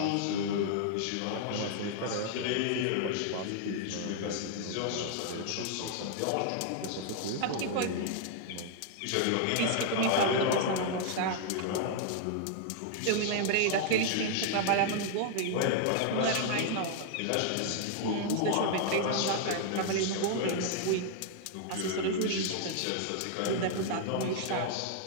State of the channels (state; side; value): different; both; correlation -0.01